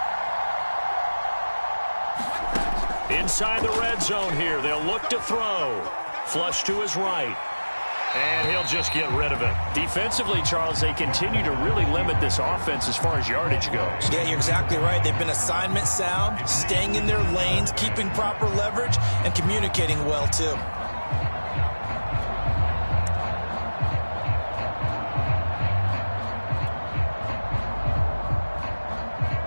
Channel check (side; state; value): both; inverted; correlation -1.00